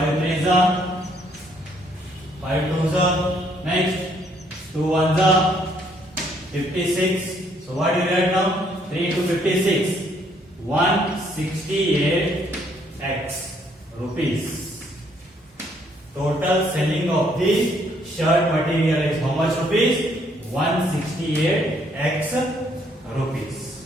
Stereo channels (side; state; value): both; normal; correlation 0.67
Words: 3s are, 5 2s are, next 2 1s are, 56. So what you will get now? 3 to 56, 168x rupees. Total selling of the shirt material is how much rupees? 168x rupees.